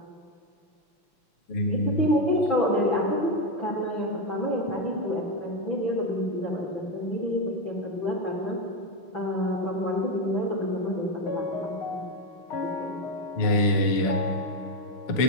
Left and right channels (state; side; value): late; right; 6.8 ms